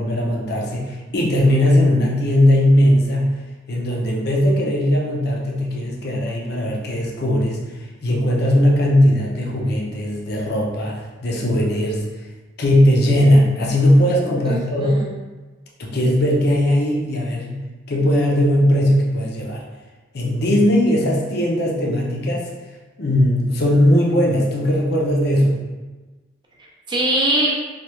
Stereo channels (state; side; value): normal; both; correlation 0.79